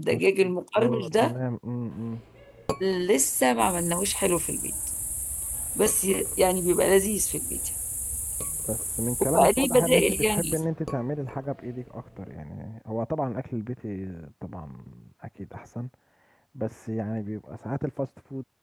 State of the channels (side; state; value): both; identical; correlation 1.00